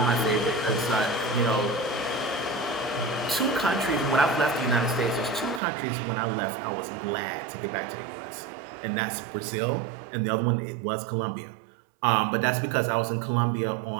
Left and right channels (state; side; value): drops out; left; at 5.6 s